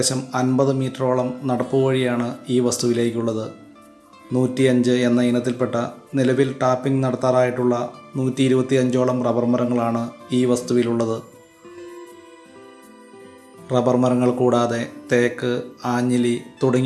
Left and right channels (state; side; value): identical; both; correlation 1.00